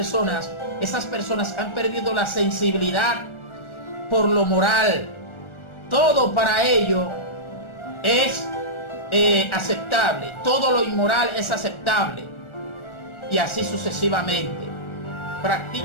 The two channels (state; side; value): late; right; 1.4 ms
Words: han perdido la sensibilidad por lo moral. Todo para ello es aceptable, todo lo inmoral es aceptable, y así sucesivamente.